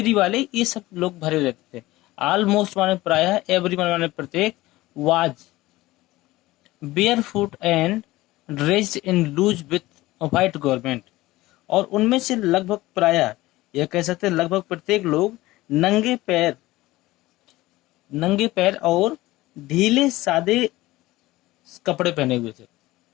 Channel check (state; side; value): quieter; right; 18.3 dB